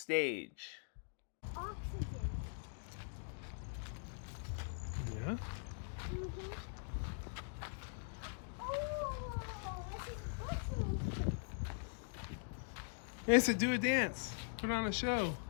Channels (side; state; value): right; silent; digital silence